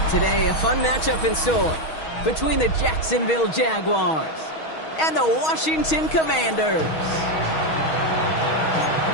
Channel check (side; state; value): right; late; 6.3 ms